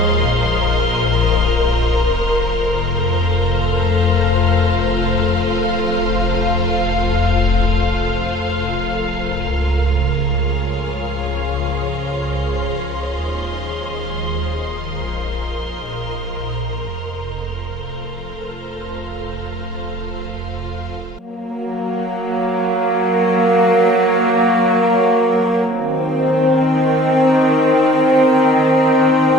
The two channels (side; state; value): both; normal; correlation 0.49